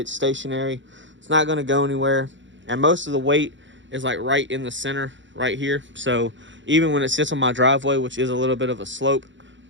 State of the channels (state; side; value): late; left; 0.54 ms